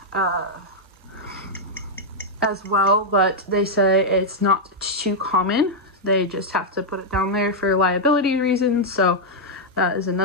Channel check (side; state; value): both; normal; correlation -0.04